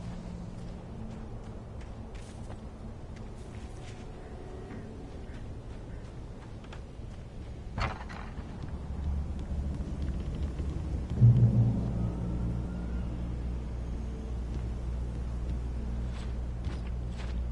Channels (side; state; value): both; identical; correlation 1.00